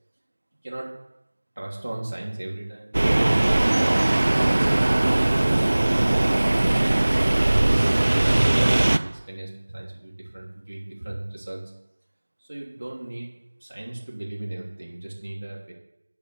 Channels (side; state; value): both; inverted; correlation -1.00